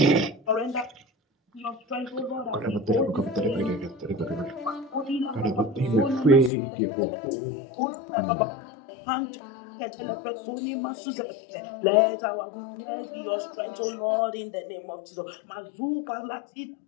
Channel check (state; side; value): drops out; right; at 6.5 s